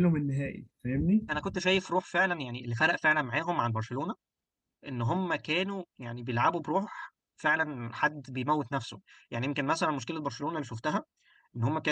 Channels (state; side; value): identical; both; correlation 1.00